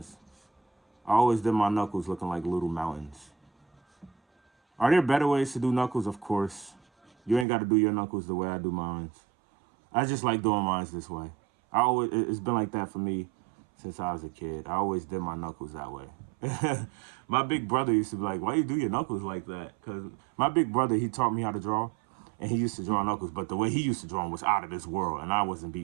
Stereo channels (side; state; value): left; drops out; at 7.5 s